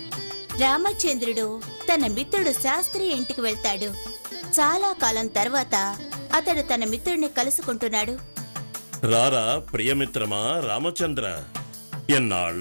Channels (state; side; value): inverted; both; correlation -1.00